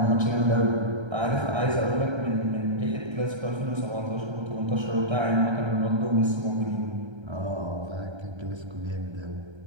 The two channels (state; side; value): late; left; 1.3 ms